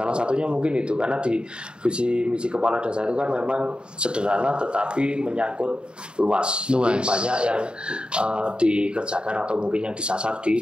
satunya mungkin itu karena di visi misi kepala desa itu kan memang sederhana tetapi menyangkut luas. Jadi banyak yang dikerjakan atau mungkin yang disasar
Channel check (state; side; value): late; left; 0.051 ms